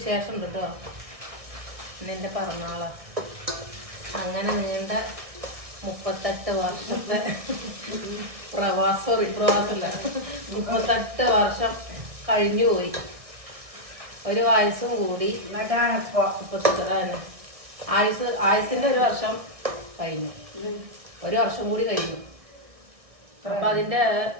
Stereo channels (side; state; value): left; late; 1.7 ms